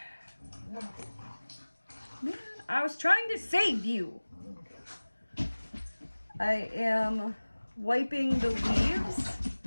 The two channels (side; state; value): both; inverted; correlation -1.00